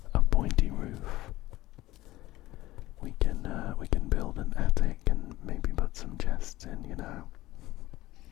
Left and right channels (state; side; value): quieter; right; 17.1 dB